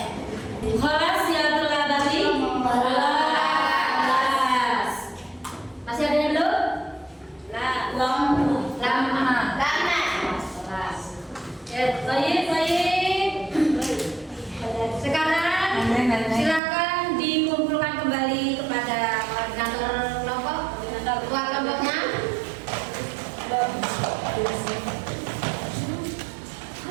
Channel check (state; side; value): drops out; left; at 16.6 s